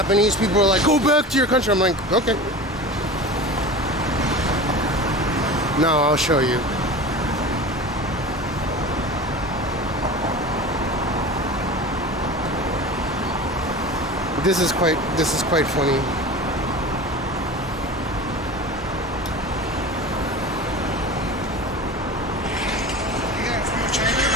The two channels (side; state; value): both; normal; correlation 0.34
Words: people are like, go back to your country. I'm like, okay. No, I'll show you. This is quite funny.